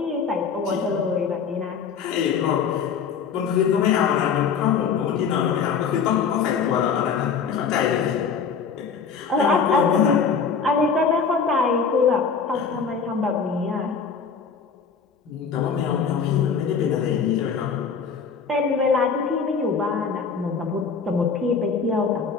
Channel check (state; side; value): quieter; right; 6.0 dB